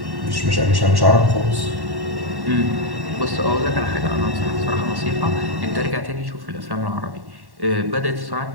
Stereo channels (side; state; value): left; late; 1.1 ms